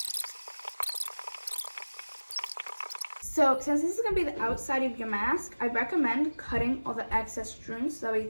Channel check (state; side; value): inverted; both; correlation -1.00